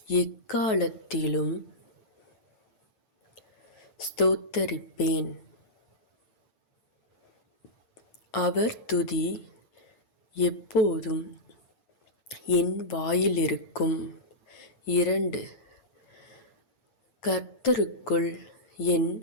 எக்காலத்திலும் ஸ்தோத்தரிப்பேன். அவர் துதி எப்போதும் என் வாயிலிருக்கும். 2. கர்த்தருக்குள் என்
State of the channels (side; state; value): right; late; 9.1 ms